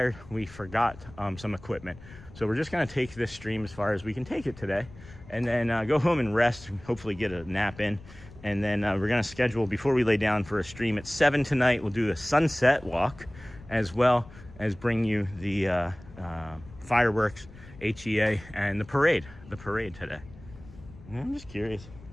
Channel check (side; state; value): left; noise; rumble, 19 dB below the sound